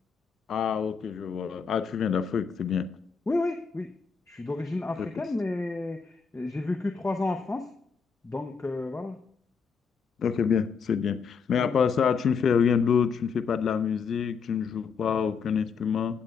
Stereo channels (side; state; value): right; quieter; 5.8 dB